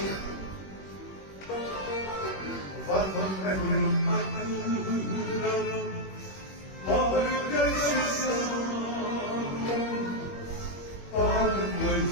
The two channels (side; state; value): right; late; 21 ms